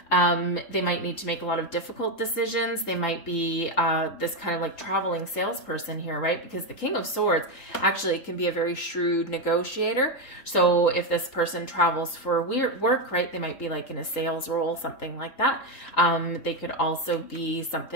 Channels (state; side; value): late; right; 3.8 ms